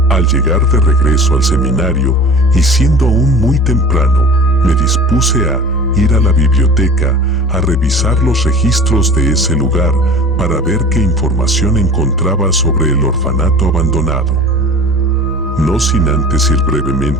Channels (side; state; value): both; normal; correlation 0.40